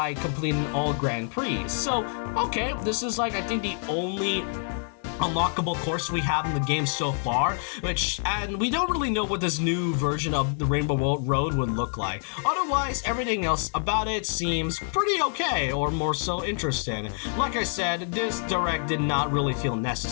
completing all Grand Prix. So, okay, this is like, I think the only unlockable course we have in the game so far, and we don't really know what this new version of the Rainbow Road would look like. Otherwise, everything else about it seems pretty okay, or more so interesting. Like I said, this direct did not really feel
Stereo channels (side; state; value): right; silent; 58 dB below the other